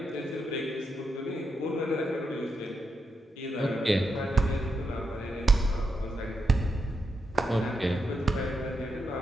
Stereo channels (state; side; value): normal; both; correlation 0.85